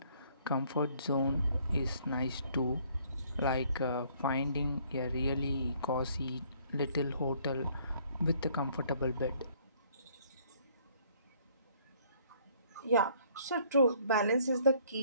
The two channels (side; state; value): both; inverted; correlation -0.62